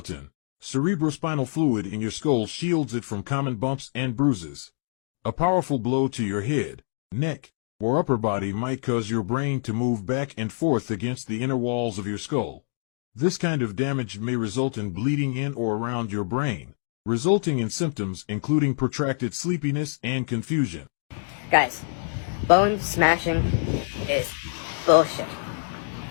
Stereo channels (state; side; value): silent; right; digital silence